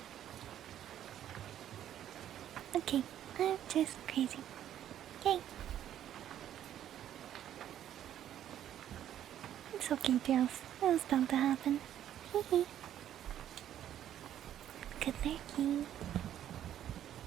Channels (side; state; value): left; quieter; 11.0 dB